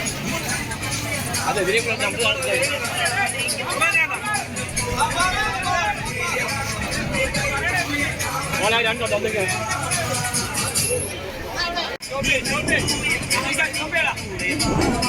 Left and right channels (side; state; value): both; identical; correlation 1.00